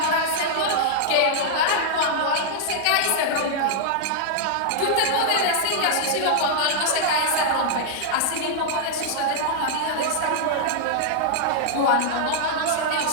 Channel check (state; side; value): different; both; correlation -0.01